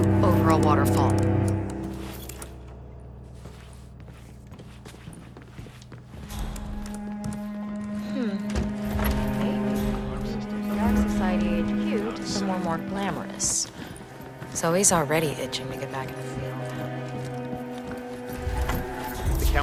over a waterfall. The Ark Society HQ to somewhere more glamorous. Zoe's already itching to get back in the field. The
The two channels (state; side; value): identical; both; correlation 1.00